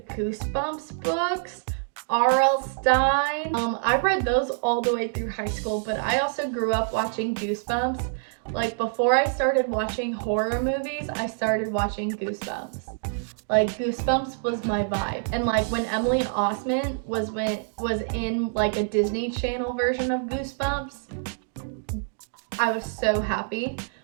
Goosebumps books, R.L. Stein. I've read those all the way through high school, but I also grew up watching Goosebumps. Like before I started watching horror movies, I started watching Goosebumps. Like Goosebumps was my vibe. And like when Emily Osment was in like a Disney Channel version of Goosebumps, I was so happy.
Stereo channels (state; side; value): silent; left; digital silence